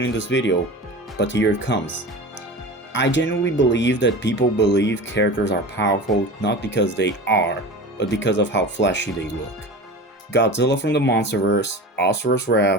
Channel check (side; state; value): both; normal; correlation 0.33